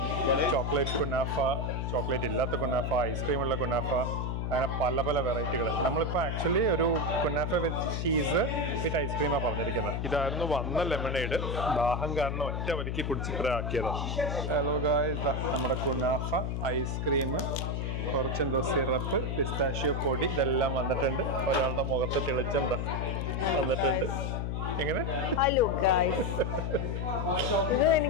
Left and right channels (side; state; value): left; noise; hum, 1 dB below the sound